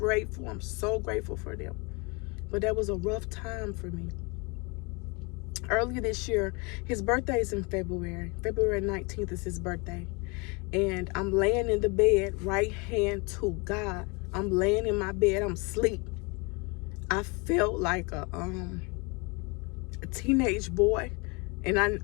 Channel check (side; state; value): right; quieter; 29.5 dB